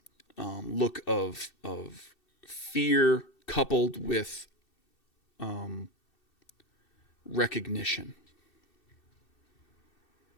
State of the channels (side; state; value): right; late; 2.7 ms